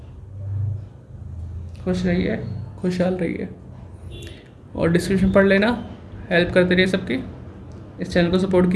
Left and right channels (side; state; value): both; identical; correlation 1.00